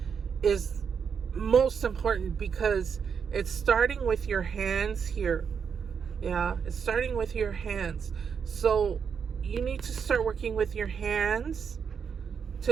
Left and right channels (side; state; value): left; quieter; 6.7 dB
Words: most important, because it's starting with your hands here. Yeah, it's starting with your hands. So you need to start working with your hands